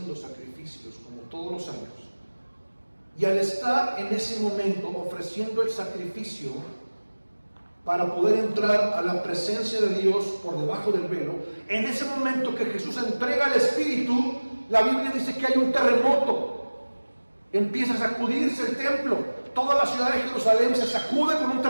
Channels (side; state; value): both; inverted; correlation -1.00